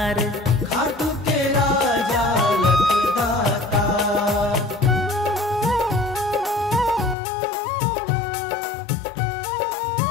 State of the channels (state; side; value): drops out; right; at 7.2 s